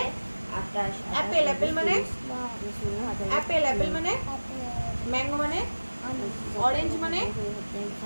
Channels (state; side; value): inverted; both; correlation -1.00